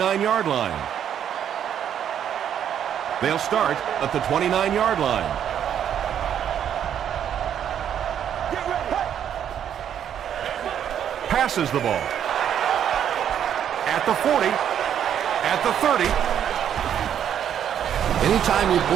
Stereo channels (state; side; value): quieter; left; 9.4 dB